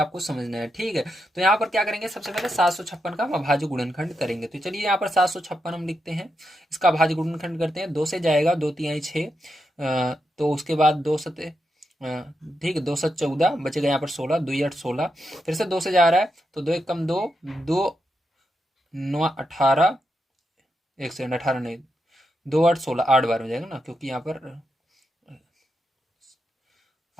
समझना है। ठीक है, तो यहाँ पर क्या करेंगे सबसे पहले 756 का अभाज्य गुणनखंड करेंगे। तो चलिए यहाँ पर 756 हम लिखते हैं, इसका अभाज्य गुणनखंड करते हैं। 2 से जाएगा 2 तिहाई 6, तो उसके बाद 2 सते, ठीक है 2 7 14 बचेगा यहाँ पर 16, 2 8 16, फिर से 2 से जा रहा है तो 2 1 कम 2, 2 9 18, एक सेकंड 18 नहीं 2 8 16, 8 बार में जाएगा ना क्योंकि यहाँ पर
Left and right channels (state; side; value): normal; both; correlation 0.85